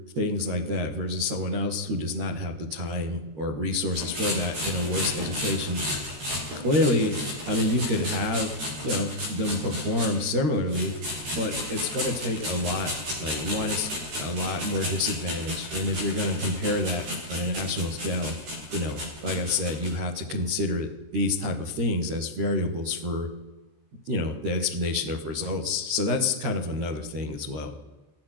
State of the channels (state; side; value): late; left; 13 ms